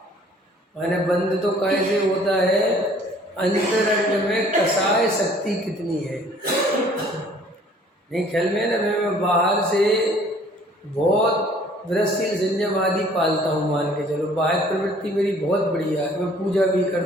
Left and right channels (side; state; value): both; normal; correlation 0.55